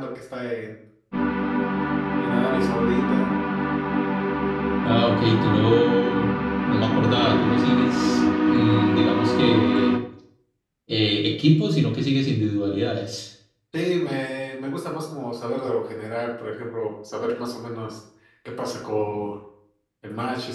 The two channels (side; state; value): both; identical; correlation 1.00